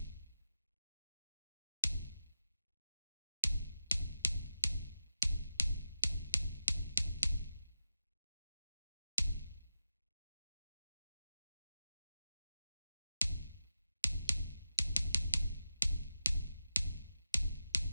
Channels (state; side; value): inverted; both; correlation -0.92